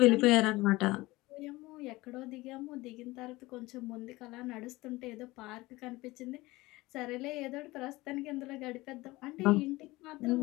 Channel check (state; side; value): quieter; right; 20.3 dB